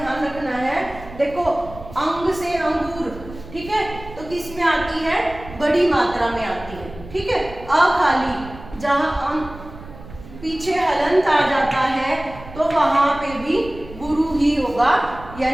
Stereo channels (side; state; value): right; noise; rumble, 16 dB below the sound